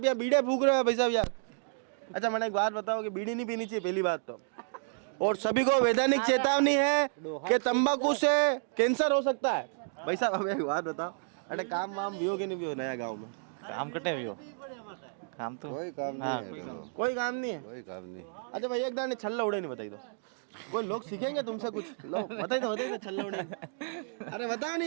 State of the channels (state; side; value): silent; left; digital silence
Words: यहाँ बीड़े फूक रहे हो भाई साहब यार? अच्छा, मैंने एक बात बताओ कि बीड़ी नहीं पीनी चाहिए, पहली बात तो। और सभी को वैधानिक चेतावनी है कि तंबाकू से कैंसर हो सकता है। भाई साहब, हमें एक बात बताओ, अरे काम वाम भी हो कि नहीं भी हो नया गाँव में? काम कटे भी हो, काम तो कोई काम नहीं है। कोई काम नहीं है। अच्छा भाई, एक दाने छल्ला उड़े नहीं बताई दो, कोई लोग सीखेंगे तुमसे कुछ। लो बताइए तो छल्ला उड़े। अरे बताओ